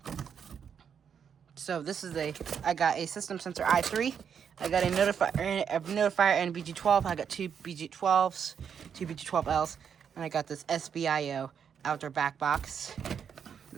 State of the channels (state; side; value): quieter; left; 7.5 dB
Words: So this is I got a system sensor i3. I got a notifier and BG12. I got two BG12s, two BG12Ls, and I got this SBIO outdoor back box.